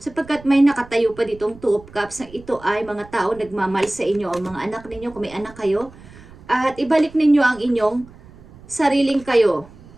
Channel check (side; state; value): right; noise; rumble, 21 dB below the sound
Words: sapagkat may nakatayo pa ditong 2 of Cups na ito ay mga tao nagmamahal sa inyo o mga anak ninyo kung may anak kayo, at ibalik ninyo ang inyong sariling kayo.